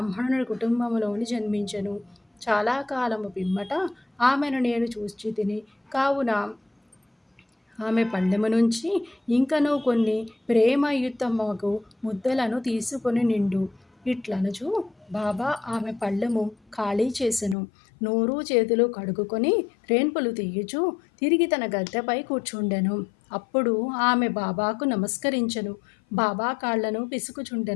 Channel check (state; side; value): drops out; right; at 17.6 s